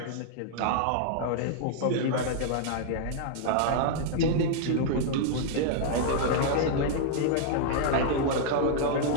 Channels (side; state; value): both; different; correlation -0.01